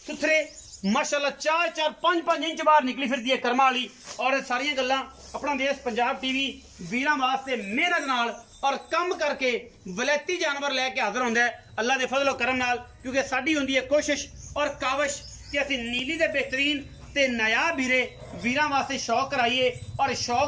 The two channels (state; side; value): identical; both; correlation 1.00